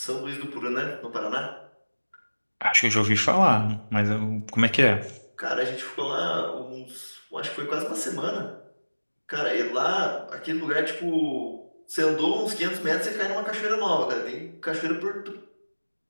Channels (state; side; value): inverted; both; correlation -1.00